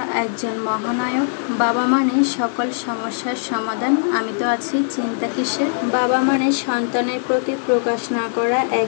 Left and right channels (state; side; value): silent; right; digital silence